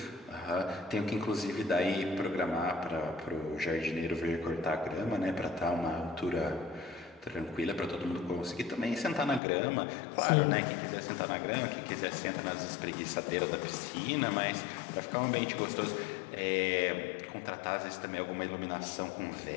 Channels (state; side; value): drops out; right; at 9.4 s